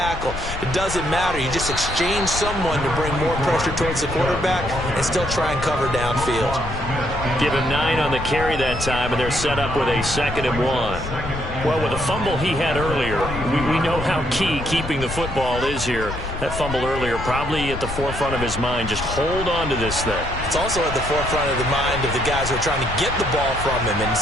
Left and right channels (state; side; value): noise; left; rumble, 8 dB below the sound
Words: It doesn't matter. You just exchange someone to bring more pressure towards the quarterback and still try and cover downfield. Give him 9 on the carry that time, and they're set up with a 2nd and 1. Well, with the fumble he had earlier, we know how key keeping the football is here. That fumble earlier probably at the forefront of his mind. Just hold on to this thing. It's also at the forefront of the mind of the guys who are trying to get the ball from him. And